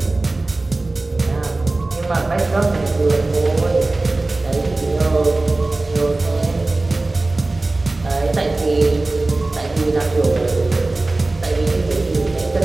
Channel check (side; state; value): left; quieter; 3.1 dB